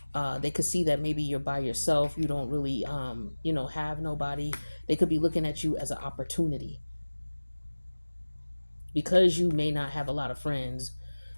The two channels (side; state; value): both; inverted; correlation -1.00